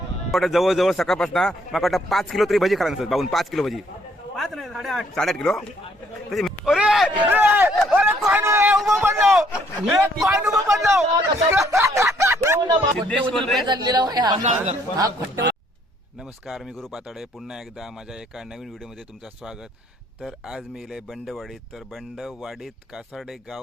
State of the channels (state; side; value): normal; both; correlation 0.66